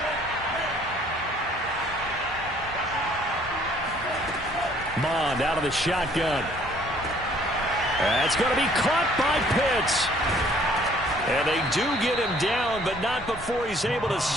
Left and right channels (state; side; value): normal; both; correlation 0.59